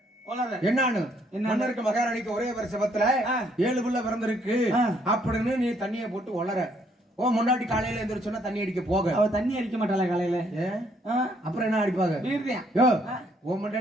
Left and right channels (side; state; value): both; normal; correlation 0.68